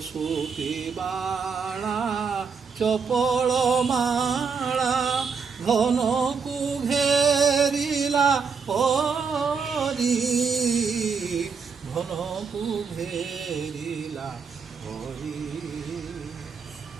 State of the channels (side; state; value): left; quieter; 5.6 dB